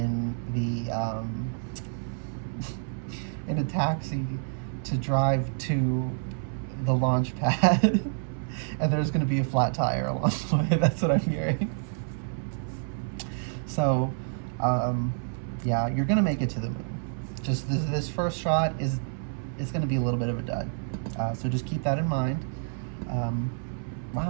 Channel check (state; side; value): silent; left; 59 dB below the other